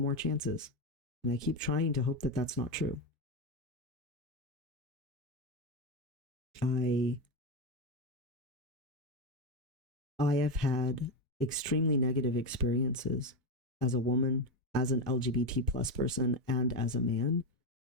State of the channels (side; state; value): both; normal; correlation 0.12